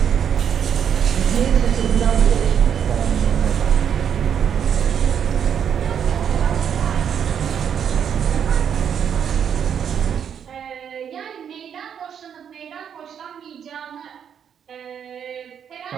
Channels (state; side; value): quieter; left; 8.2 dB